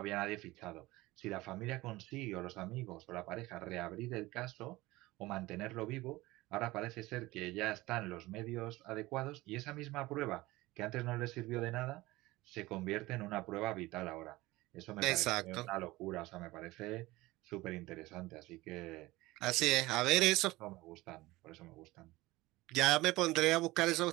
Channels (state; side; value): quieter; left; 19.6 dB